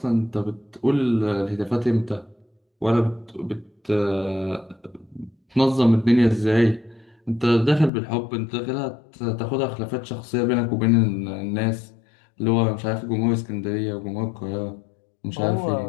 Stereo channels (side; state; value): right; drops out; at 7.9 s